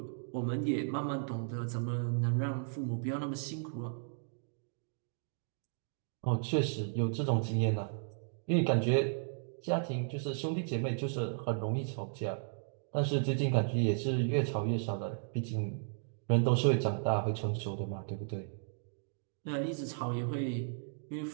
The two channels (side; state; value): left; silent; digital silence